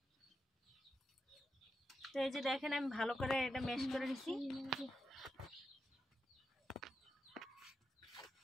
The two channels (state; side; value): normal; both; correlation 0.87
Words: তো এই যে দেখেন আমি ভালো করে এটা ম্যাশ করে নিছি।